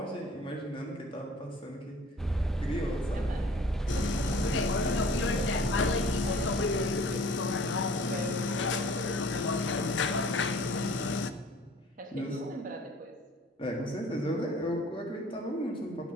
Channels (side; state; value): both; normal; correlation 0.51